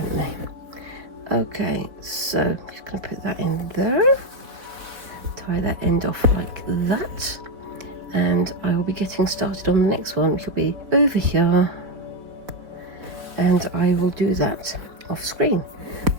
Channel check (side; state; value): left; late; 3.8 ms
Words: they? Okay, so I'm just going to put that in there, tie that end off like that, and I will be getting started on the next one, which will be over here, and I will do that off screen.